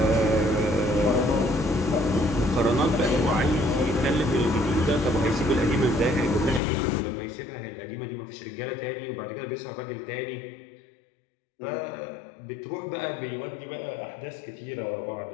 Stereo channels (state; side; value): drops out; right; at 6.6 s